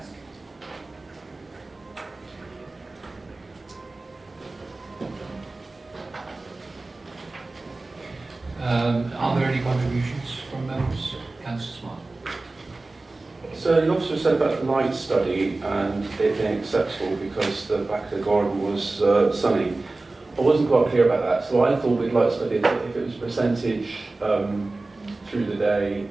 Are there any contributions from members? Councillor Smart. So the officer said about the light study and it being acceptable because the back of the garden was sunny. I wasn't quite clear about that, so I thought we'd light study that if it was percentage through the day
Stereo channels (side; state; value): left; quieter; 3.2 dB